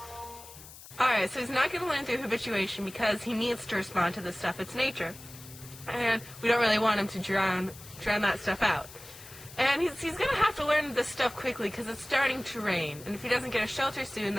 Alright, so he's not going to learn through habituation because he needs to respond to this stuff. It's nature. And we don't really want him to drown that stuff out. And he's going to have to learn this stuff quickly because it's starting to rain. And if he doesn't get a shelter soon,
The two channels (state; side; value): noise; left; hiss, 17 dB below the sound